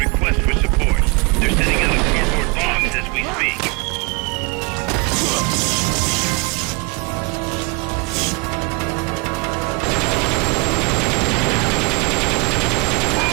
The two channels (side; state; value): left; quieter; 29.2 dB